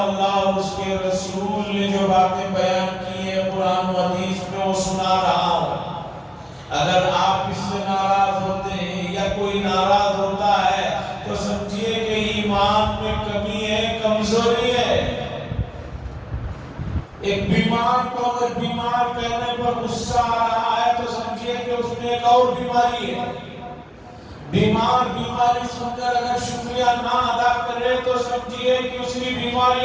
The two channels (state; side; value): identical; both; correlation 1.00